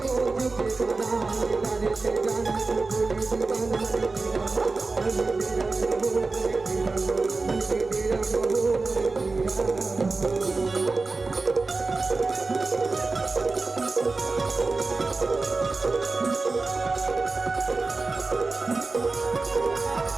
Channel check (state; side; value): quieter; left; 3.8 dB